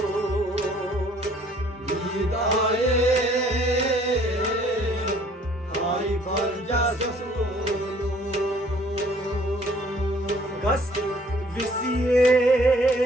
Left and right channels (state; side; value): normal; both; correlation 0.58